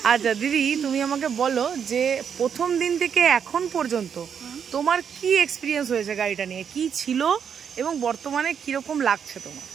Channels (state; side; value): quieter; left; 7.5 dB